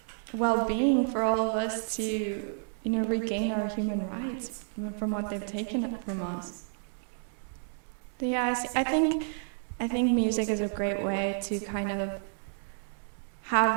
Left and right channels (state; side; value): silent; left; digital silence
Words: well-being for all of us to, regain our human rights from what they've taken from us. So yeah, I think music is a great way to kind of